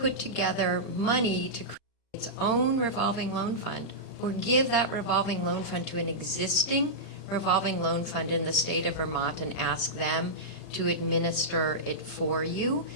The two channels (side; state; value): right; late; 35 ms